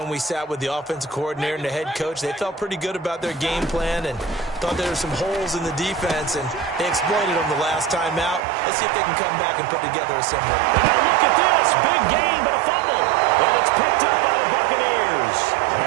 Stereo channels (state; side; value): drops out; left; at 8.5 s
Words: we sat with the offensive coordinator and the head coach. They felt pretty good about their game plan and thought there were some holes in the defense, and they exploited them the last time out. Let's see if they can come back and put together a similar. And now look at this. Big gain, but a fumble. And it's picked up by the Buccaneers.